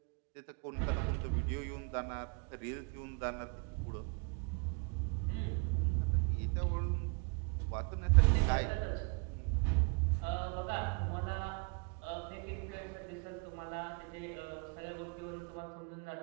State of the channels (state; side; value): quieter; left; 33.2 dB